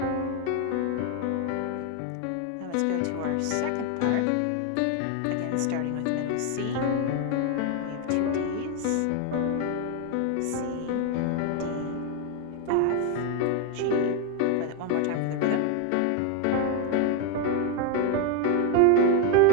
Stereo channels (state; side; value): different; both; correlation 0.01